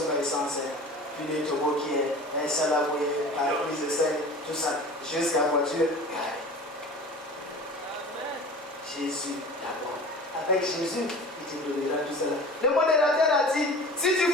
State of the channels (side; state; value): both; normal; correlation 0.39